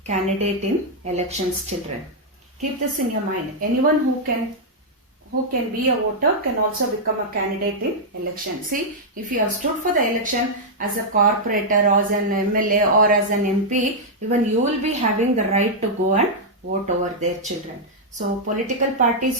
candidate in elections, children. Keep this in your mind. Anyone who can be a voter can also become a candidate in election. See, if you have stood for the election as a corporator or as an MLA or as an MP, even you will be having the right to go and vote over their, children. So, political parties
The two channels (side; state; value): both; normal; correlation -0.05